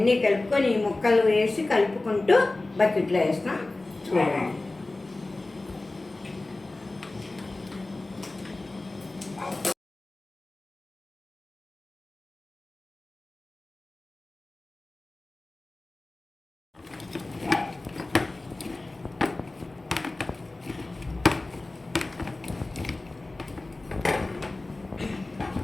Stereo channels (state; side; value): quieter; right; 3.0 dB